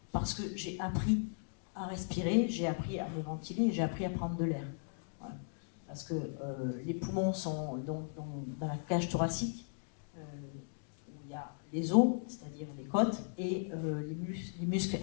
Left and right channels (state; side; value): silent; right; digital silence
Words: parce que j'ai appris à respirer, j'ai appris à me ventiler, j'ai appris à prendre de l'air. Voilà. Parce que les poumons sont dans la cage thoracique, où il y a les os, c'est-à-dire les côtes, et les muscles